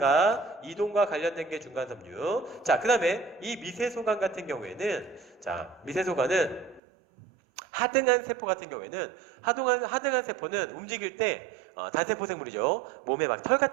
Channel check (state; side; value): drops out; left; at 6.8 s